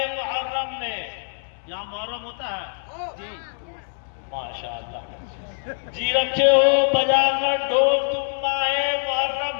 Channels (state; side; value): silent; right; 63 dB below the other